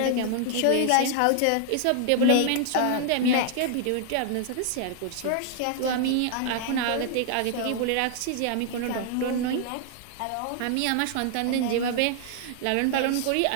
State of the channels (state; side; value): different; both; correlation 0.00